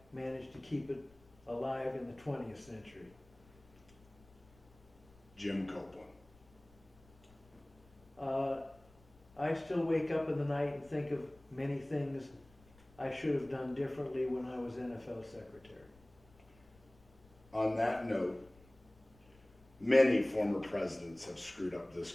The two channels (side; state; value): left; noise; rumble, 27 dB below the sound